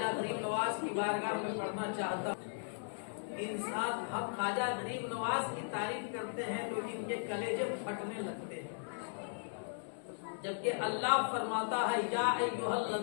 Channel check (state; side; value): silent; right; digital silence